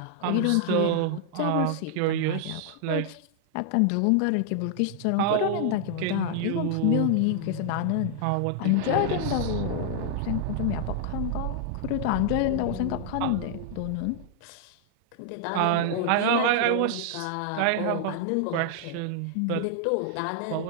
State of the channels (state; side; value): different; both; correlation 0.00